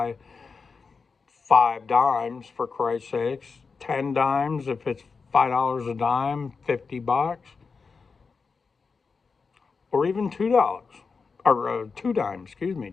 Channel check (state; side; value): quieter; right; 4.9 dB